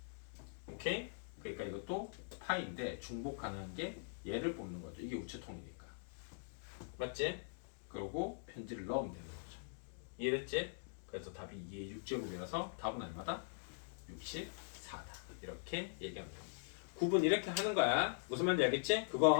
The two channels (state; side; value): silent; right; digital silence